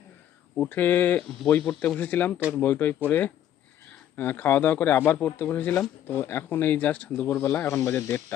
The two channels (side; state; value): right; quieter; 11.2 dB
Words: উঠে বই পড়তে বসেছিলাম। তো বই টই পড়ে খাওয়া দাওয়া করে আবার পড়তে বসেছিলাম। তো এখন এই জাস্ট দুপুরবেলা, এখন বাজে